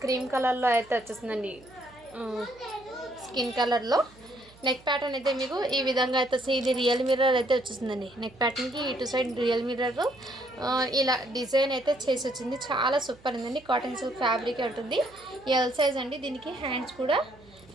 క్రీమ్ కలర్లో అయితే వచ్చేస్తుందండి, స్కిన్ కలర్లో. నెక్ ప్యాటర్న్ అయితే మీకు ఈ విధంగా అయితే ఇది రియల్ మిర్రర్ అయితే వచ్చేస్తుందండి. నెక్ ప్యాటర్న్కి ఇటు సైడ్ రియల్ మిర్రర్ ఇలా డిజైన్ అయితే చేసి వచ్చింది. చాలా సూపర్ ఉందండి. కాటన్ సిల్క్ ఫ్యాబ్రిక్ ఉంటుంది. ఎల్ సైజ్ అండి. దీనికి హ్యాండ్స్ కూడా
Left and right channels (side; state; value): right; noise; hum, 25 dB below the sound